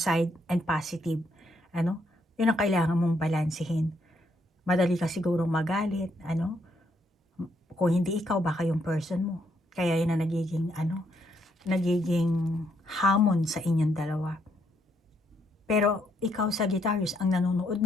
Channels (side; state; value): both; normal; correlation 0.74